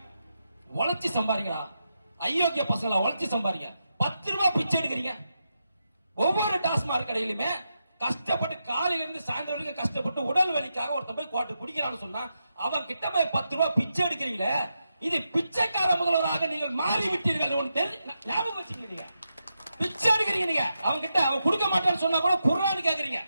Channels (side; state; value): both; inverted; correlation -0.86